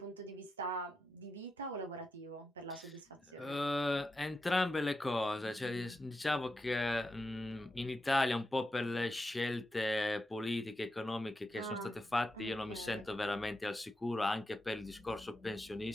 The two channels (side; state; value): both; normal; correlation 0.88